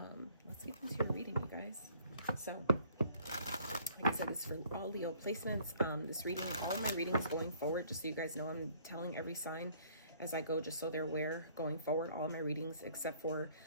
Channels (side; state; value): both; inverted; correlation -0.59